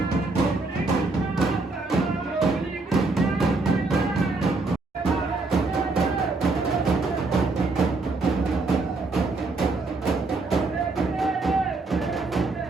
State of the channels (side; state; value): left; quieter; 3.5 dB